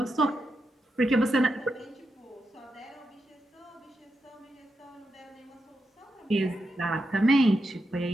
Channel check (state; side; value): normal; both; correlation 0.86